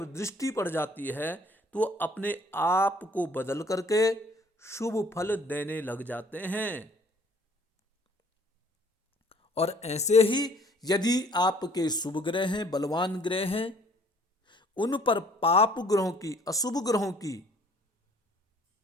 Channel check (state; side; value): normal; both; correlation 0.56